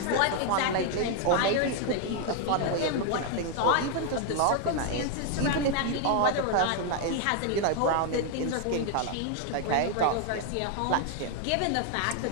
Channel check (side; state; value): both; different; correlation 0.00